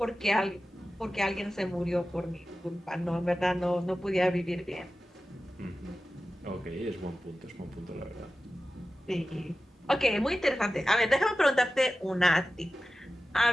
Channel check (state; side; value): normal; both; correlation 0.95